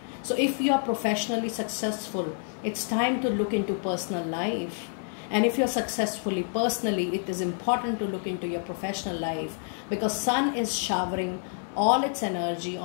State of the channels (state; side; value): silent; right; 59 dB below the other